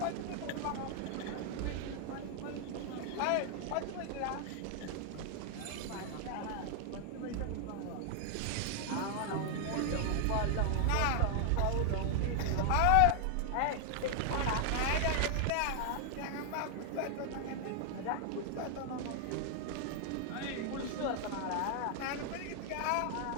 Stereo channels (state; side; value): different; both; correlation 0.00